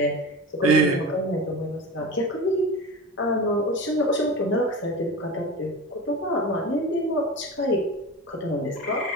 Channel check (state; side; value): normal; both; correlation 0.28